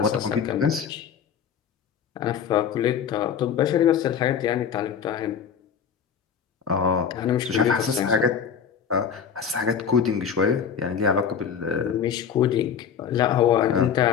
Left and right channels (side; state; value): right; quieter; 7.5 dB